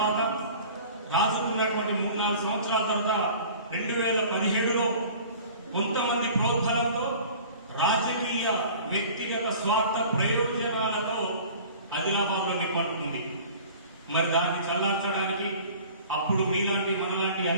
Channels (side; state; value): both; inverted; correlation -0.45